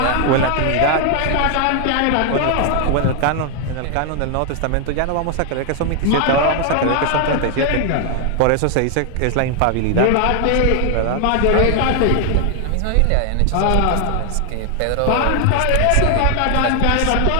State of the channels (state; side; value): different; both; correlation 0.00